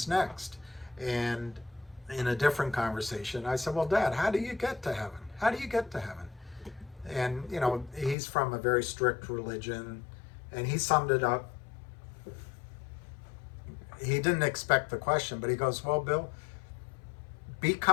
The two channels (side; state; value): right; drops out; at 8.2 s